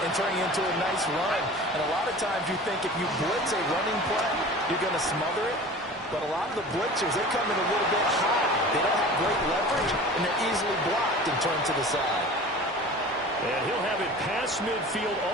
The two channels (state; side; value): normal; both; correlation 0.39